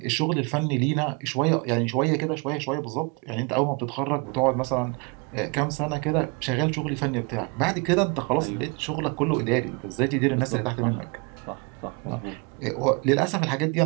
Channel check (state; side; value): quieter; left; 30.5 dB